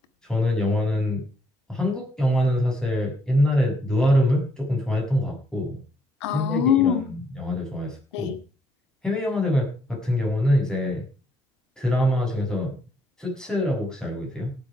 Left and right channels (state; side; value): normal; both; correlation 0.71